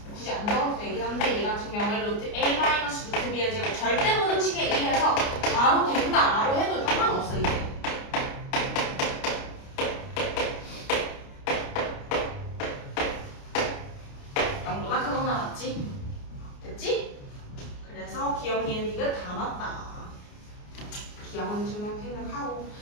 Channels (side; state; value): right; late; 29 ms